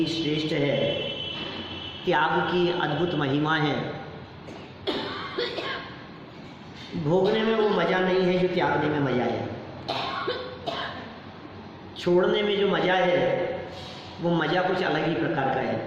श्रेष्ठ है। त्याग की अद्भुत महिमा है। भोगने में वो मज़ा नहीं है जो त्यागने में मज़ा है। छोड़ने में जो मज़ा है वो मज़ा कुछ अलग ही प्रकार का है।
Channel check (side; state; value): both; identical; correlation 1.00